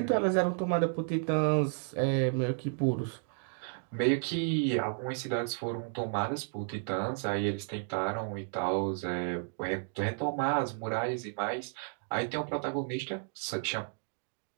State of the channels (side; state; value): left; silent; digital silence